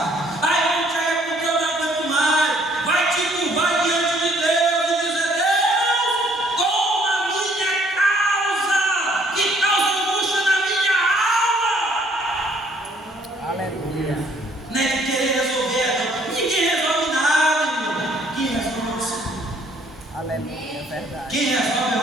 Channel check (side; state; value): both; normal; correlation 0.63